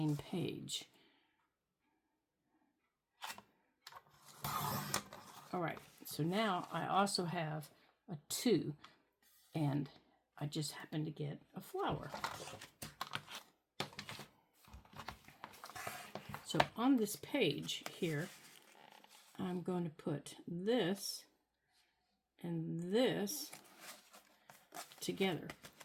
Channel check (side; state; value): both; identical; correlation 1.00